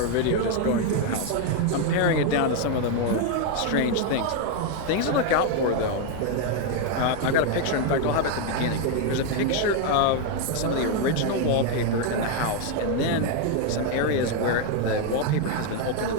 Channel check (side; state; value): both; different; correlation 0.01